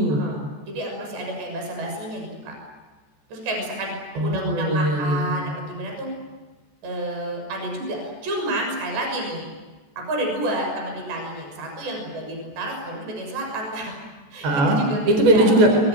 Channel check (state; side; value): late; left; 14 ms